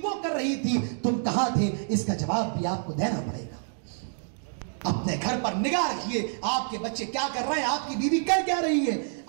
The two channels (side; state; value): left; silent; digital silence